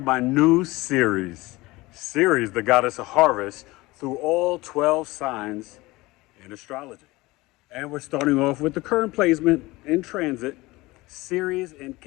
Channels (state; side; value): quieter; right; 20.8 dB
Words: my new series, Ceres, the goddess of harvest, through all 12 signs in astrology. And we're starting off with the current placement in transit, Ceres in